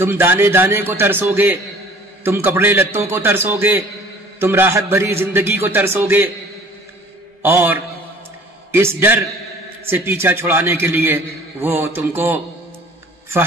دانے دانے کو ترسو گے، تم کپڑے لتوں کو ترسو گے، تم راحت بھری زندگی کو ترسو گے. اور اس ڈر سے پیچھا چھڑانے کے لیے وہ تم کو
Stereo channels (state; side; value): normal; both; correlation 0.50